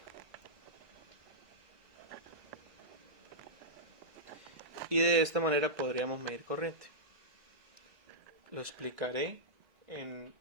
Y de esta manera podríamos medir corriente. Lo explicaré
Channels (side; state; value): left; late; 2.0 ms